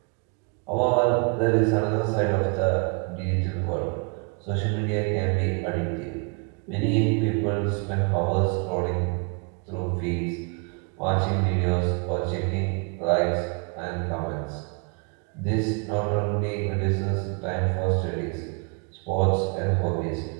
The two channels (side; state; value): left; quieter; 36.0 dB